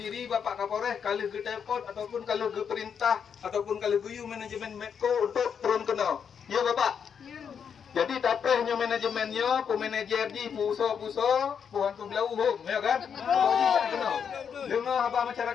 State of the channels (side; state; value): right; quieter; 7.2 dB